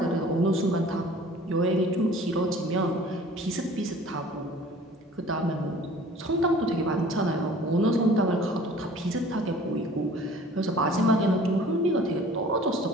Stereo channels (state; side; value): normal; both; correlation 0.49